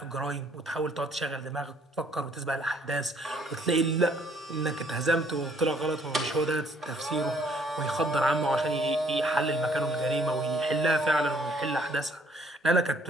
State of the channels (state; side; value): normal; both; correlation 0.63